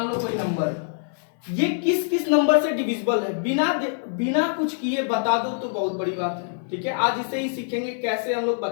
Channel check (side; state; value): right; silent; 62 dB below the other